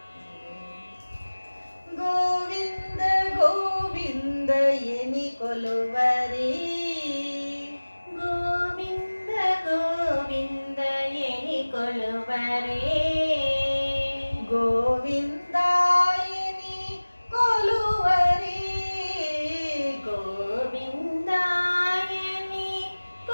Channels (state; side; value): inverted; both; correlation -1.00